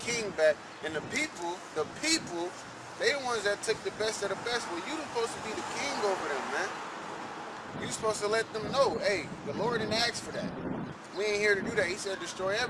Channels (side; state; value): both; identical; correlation 1.00